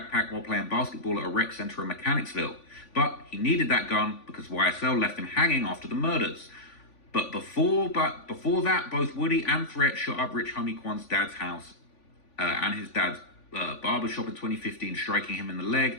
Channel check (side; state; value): right; late; 3.5 ms